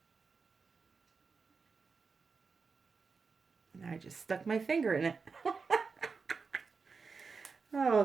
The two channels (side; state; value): left; quieter; 4.8 dB